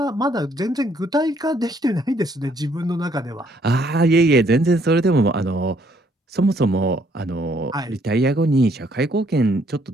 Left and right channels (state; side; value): normal; both; correlation 0.67